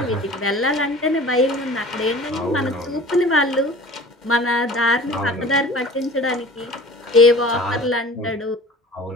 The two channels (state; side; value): normal; both; correlation 0.42